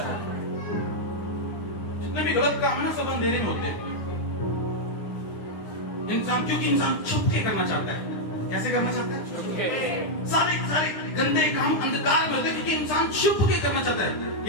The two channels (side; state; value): right; late; 9.9 ms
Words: जितने भी गलत काम है ना, सब अंधेरे में होते हैं। इंसान, क्योंकि इंसान छुप के करना चाहता है। कैसे करना चाहता है? सारे गंदे काम अंधकार में होते हैं, क्योंकि इंसान छुप के करना चाहता है।